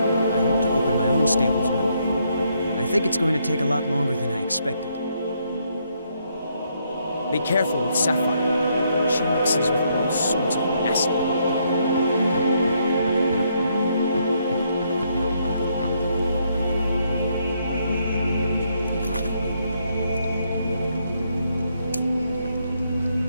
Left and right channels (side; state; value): both; inverted; correlation -0.74